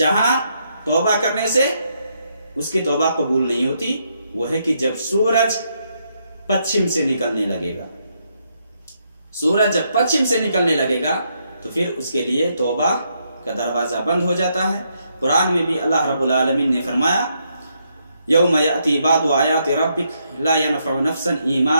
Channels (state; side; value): inverted; both; correlation -0.77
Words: توبہ کرنے سے اس کی توبہ قبول نہیں ہوتی، وہ ہے کہ جب سورج پچھم سے نکلنے لگے گا. سورج جب پچھم سے نکلنے لگے گا تو پھر اس کے لیے توبہ کا دروازہ بند ہو جاتا ہے. قرآن میں بھی اللہ رب العالمین نے فرمایا، یوم یأتی بعض آیات ربک لا ینفع نفسا